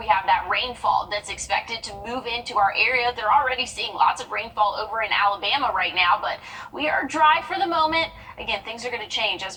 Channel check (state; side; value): identical; both; correlation 1.00